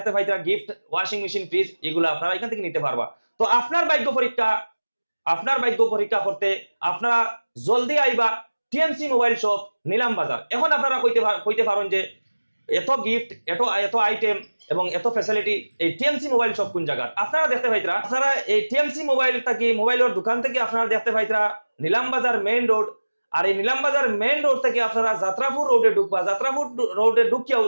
পাইতরা গিফট, ওয়াশিং মেশিন, ফ্রিজ, এগুলো আপনারা এখান থেকে নিতে পারবা। তো আপনার ভাগ্য পরীক্ষা করতে আপনারা জলদি আইবা টিএমসি মোবাইল শপ নিলাম বাজার। এখন আপনারা কইতে পারেন যে এত গিফট, এত আইটেম এবং এত ফ্যাসিলিটি এই টিএমসি মোবাইল শপ কোন জায়গা আপনারা দেখতে পাইতরা। আপনারা এই টিএমসি মোবাইল থেকে, মোবাইলের দোকান থেকে আপনারা দেখতে পাইতরা নিলাম বাজার মেইন রোড। আর এই নিলাম বাজার মেইন রোড থেকে আপনারা যাত্রাপুর রোডে ঢুকবা। যাত্রাপুর রোডে ঢুকিয়াও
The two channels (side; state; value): both; inverted; correlation -1.00